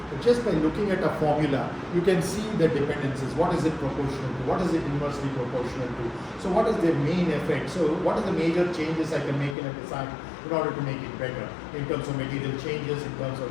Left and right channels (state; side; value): drops out; right; at 9.6 s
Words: But just by looking at a formula, you can see the dependencies. What is it proportional to? What is it inversely proportional to? So what is the main effect? So what are the major changes I can make in a design in order to make it better in terms of material changes, in terms